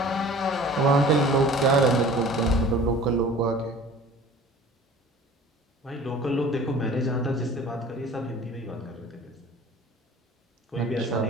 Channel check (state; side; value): normal; both; correlation 0.45